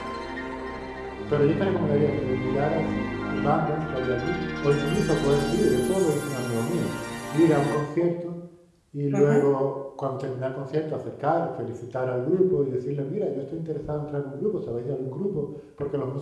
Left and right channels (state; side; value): identical; both; correlation 1.00